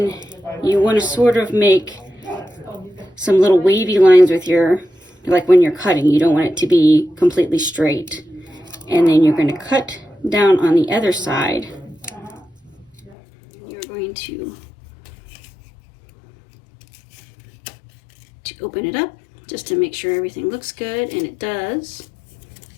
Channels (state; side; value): drops out; right; at 13.2 s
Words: you want to sort of make some little wavy lines with your, like when you're cutting, you don't want it to be completely straight. And then you're going to cut down on the other side. You're going to open it up just to make sure everything looks good, and it does.